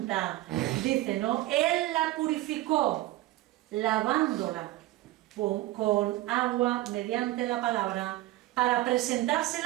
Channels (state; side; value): quieter; left; 17.0 dB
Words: dice, ¿no? Él la purificó, lavándola con agua mediante la palabra, para